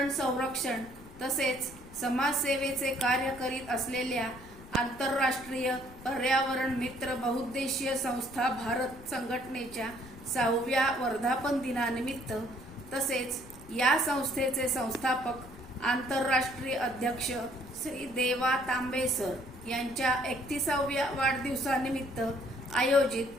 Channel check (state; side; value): noise; left; rumble, 18 dB below the sound